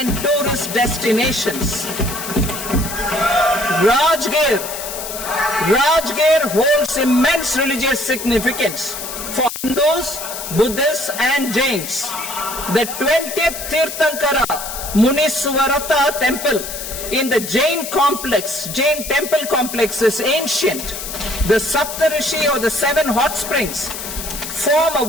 tourist destinations. Rajgir holds immense religious significance for Hindus, Buddhists and Jains. The 20th Tirthankara Muniswarata Temple in the Jain temple complex is ancient. The Saptarishi or the 7 hot springs form a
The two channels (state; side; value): noise; left; hiss, 8 dB below the sound